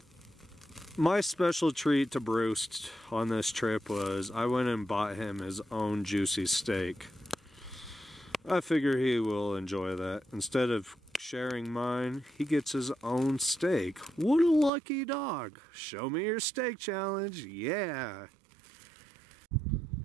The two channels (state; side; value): drops out; left; at 14.7 s